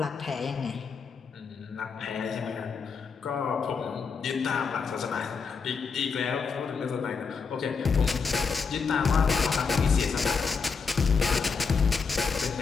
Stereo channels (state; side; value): quieter; right; 5.3 dB